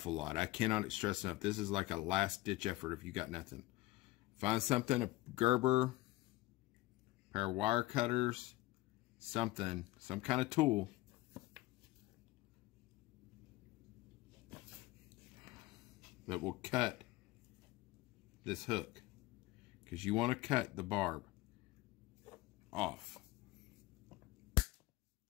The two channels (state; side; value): quieter; right; 18.8 dB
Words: lot. I cannot stress enough. This is like a last ditch effort if you got nothing. Find something, a Gerber, pair of wire cutters, something, some kind of tool. That will cut this hook. Because you want to cut the barb off.